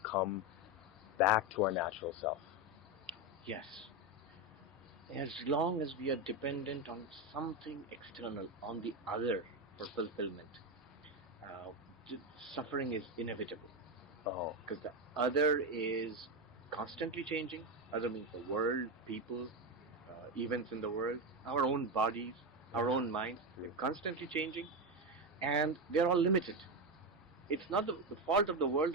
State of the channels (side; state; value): both; normal; correlation 0.13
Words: come back to our natural self? Yes. As long as we are dependent on something external, on the other for fulfillment, uh, suffering is inevitable. Because the other is constantly changing. Other means the world, people, events in the world, our own bodies, our own minds. They're constantly changing, and they're all limited. It's not the fault of the world